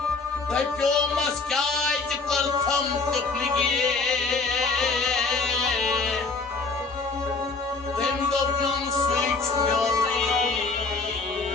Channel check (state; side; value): quieter; right; 4.0 dB